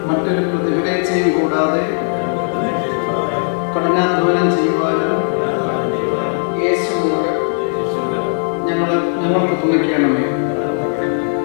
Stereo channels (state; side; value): silent; right; 68 dB below the other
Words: മറ്റൊരു പ്രതിഫലേച്ഛയും കൂടാതെ കഠിനാധ്വാനം ചെയ്യുവാനും ഞങ്ങൾക്ക് തുണയ്ക്കണമേ.